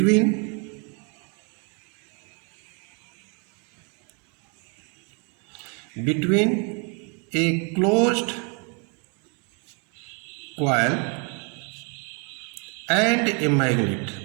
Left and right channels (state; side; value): quieter; left; 34.9 dB